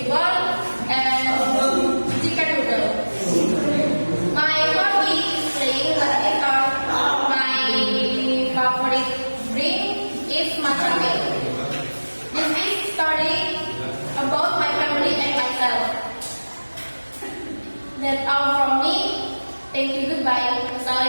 and chicken noodle. My hobby is playing badminton. My favorite drink is matcha milk. This is story about my family and myself. That's all from me. Thank you. Goodbye.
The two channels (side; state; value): both; inverted; correlation -1.00